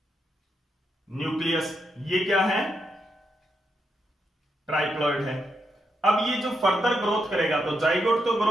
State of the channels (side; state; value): both; normal; correlation 0.82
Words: न्यूक्लियस। ये क्या है, ट्राइप्लॉइड है। अब ये जो फर्दर ग्रोथ करेगा, तो जाइगोट तो